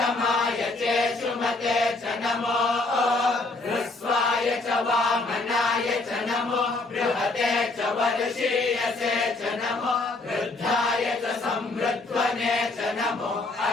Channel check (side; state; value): right; quieter; 3.2 dB